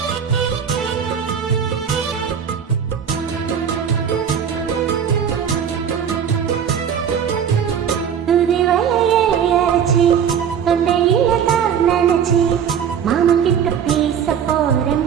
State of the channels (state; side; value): quieter; left; 8.0 dB